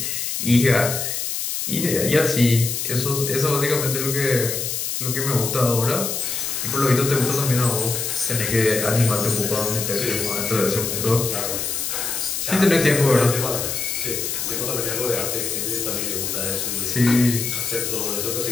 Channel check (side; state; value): left; noise; hiss, 2 dB below the sound